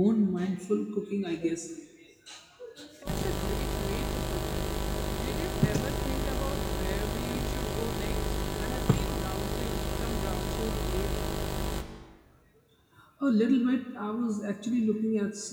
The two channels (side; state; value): both; identical; correlation 1.00